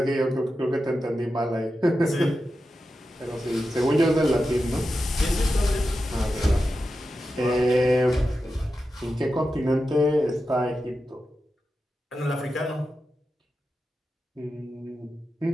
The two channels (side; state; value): both; normal; correlation 0.90